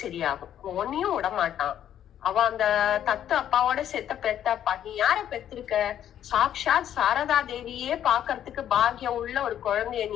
சரியாகும், உன்னையும் விடமாட்டான், அவ அந்த தத்து அப்பாவோட செத்த பெத்தப்பா. நீ யார பெத்திருக்க? சாக்ஷாத் சாரதா தேவியே பாக்குறதுக்கு பாக்கியம் உள்ள ஒரு குழந்தைய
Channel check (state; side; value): quieter; right; 10.5 dB